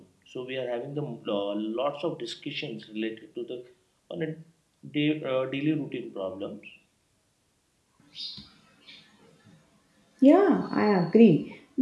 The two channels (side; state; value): both; identical; correlation 1.00